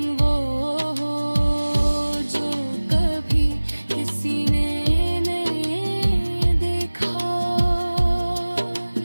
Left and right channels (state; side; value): inverted; both; correlation -1.00